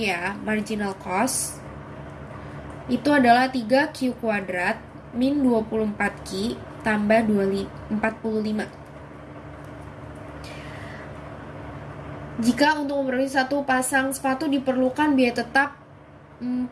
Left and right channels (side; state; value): both; identical; correlation 1.00